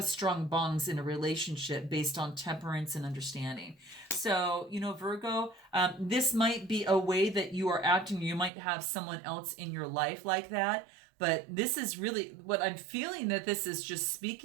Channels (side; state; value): left; drops out; at 8.5 s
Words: strong bonds in a relationship based on temperance and understanding. So, you know, Virgo, this might be a way that you are acting. You might have someone else in your life like that. But this is really what I'm feeling, that this is just